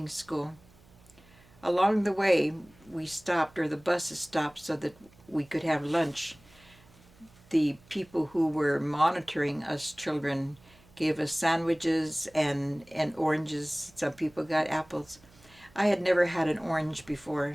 school. Along the way, we stopped, or the buses stopped, so that we could have lunch. The people who were monitoring us children gave us sandwiches and oranges. Some people got apples. I had never had an orange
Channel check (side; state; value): right; noise; hum, 27 dB below the sound